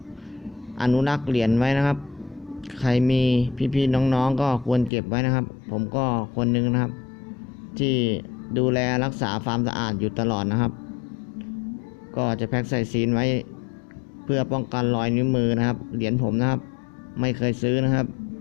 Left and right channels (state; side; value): drops out; right; at 4.9 s